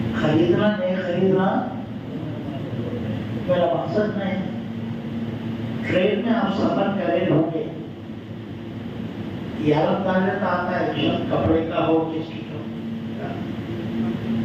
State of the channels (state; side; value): identical; both; correlation 1.00